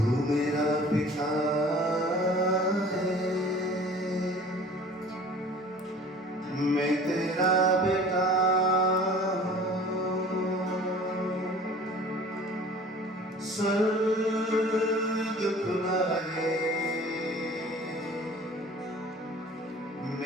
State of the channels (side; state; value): both; normal; correlation 0.46